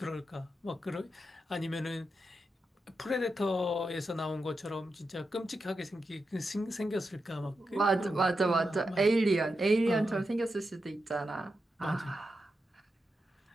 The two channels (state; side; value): normal; both; correlation 0.88